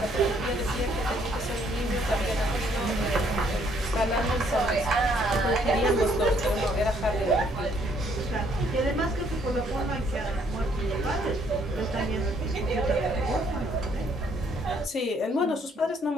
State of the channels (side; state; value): both; normal; correlation 0.67